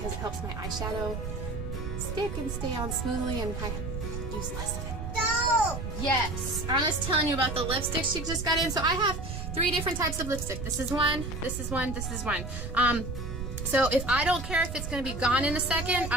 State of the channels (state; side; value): noise; right; rumble, 5 dB below the sound